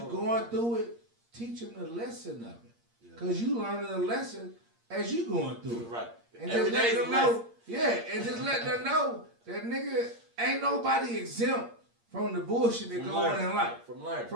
going through it, teach them the lesson of it. Because you learning the lesson as you going through it. Right. And just let them know. Yeah, and just let them know that nigga ain't nobody exempt from the bullshit that go on in life.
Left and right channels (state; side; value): late; left; 8.6 ms